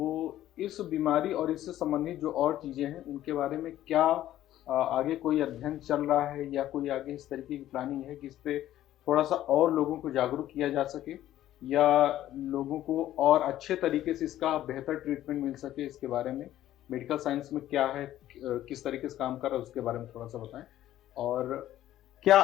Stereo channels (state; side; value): quieter; right; 13.2 dB